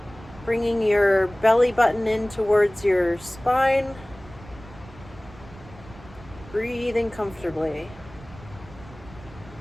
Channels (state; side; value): noise; right; rumble, 19 dB below the sound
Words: bringing your belly button in towards your spine, breathing comfortably.